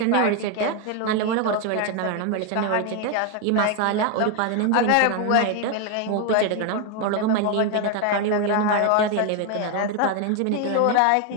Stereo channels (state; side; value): different; both; correlation 0.01